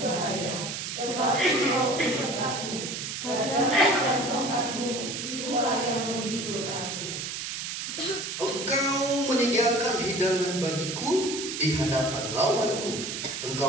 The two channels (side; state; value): right; noise; hiss, 5 dB below the sound